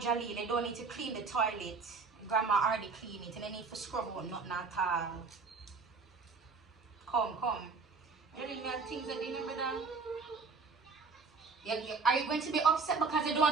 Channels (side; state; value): left; quieter; 4.5 dB